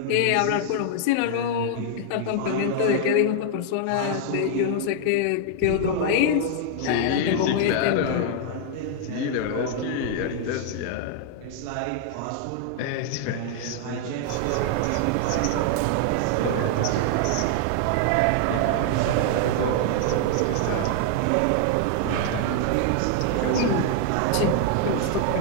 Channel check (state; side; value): different; both; correlation 0.00